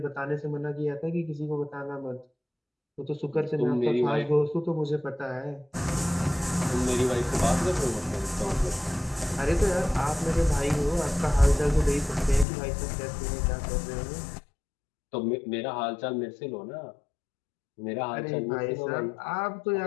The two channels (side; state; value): right; drops out; at 12.5 s